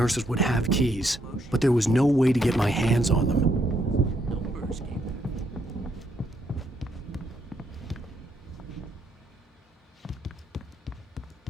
would have keys, but there was no way to get my hands on them.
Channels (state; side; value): normal; both; correlation 0.74